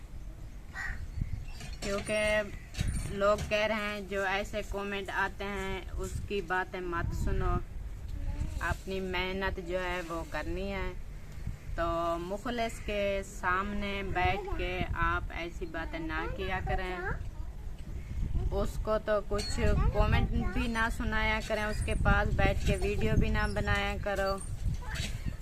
क्योंकि लोग कह रहे हैं जो ऐसे कमेंट आते हैं उसकी बातें मत सुनो, अपनी मेहनत जो है वो करनी है। तो मुखलिस के सामने बैठ के आप ऐसी बातें ना किया करें, उसको तो कुछ कमेंट भी ना सुनाया करें, उसके पास बैठ के वीडियो भी ना बनाया करो।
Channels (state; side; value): identical; both; correlation 1.00